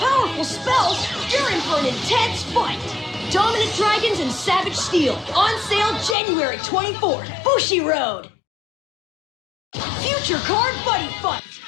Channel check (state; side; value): drops out; right; at 6.2 s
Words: spells, you're in for an intense fight! Dominant Dragons and Savage Steel, on sale January 24th, Bushi Road! Future Card Buddyfight!